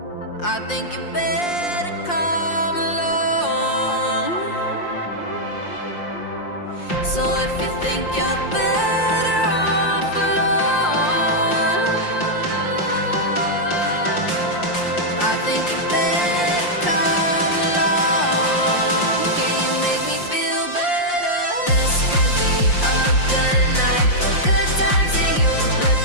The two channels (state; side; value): late; right; 5.7 ms